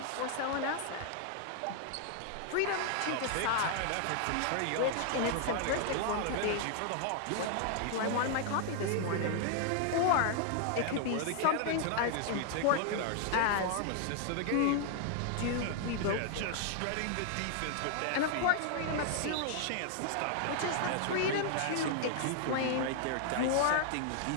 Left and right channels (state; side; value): different; both; correlation 0.00